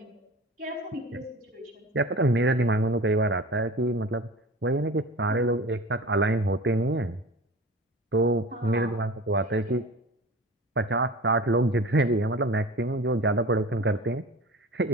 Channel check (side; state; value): both; normal; correlation 0.36